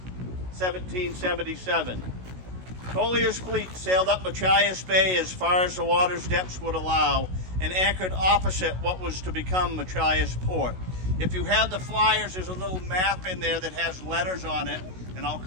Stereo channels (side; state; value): left; late; 16 ms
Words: 1777, Collier's fleet sailed up Machias Bay as far as the water's depths would allow and anchored opposite what was to become Machias Port. If you have the flyers, there's a little map in there that has letters on it, and I'll